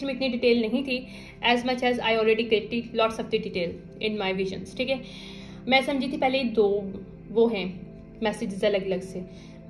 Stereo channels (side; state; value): both; identical; correlation 1.00